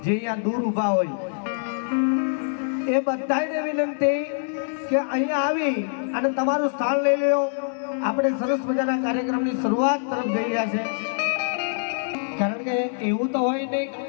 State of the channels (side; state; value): right; silent; digital silence